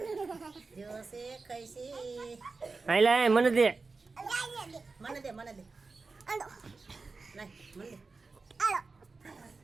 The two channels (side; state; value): left; quieter; 4.1 dB